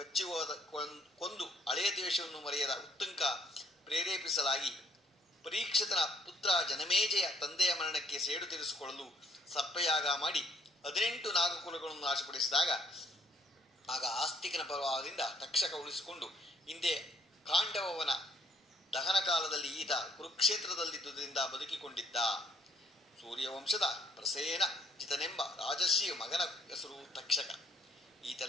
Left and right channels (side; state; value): both; normal; correlation 0.65